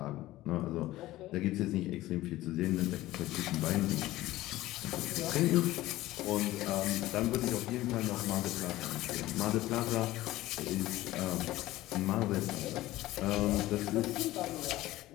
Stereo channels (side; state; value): right; quieter; 16.5 dB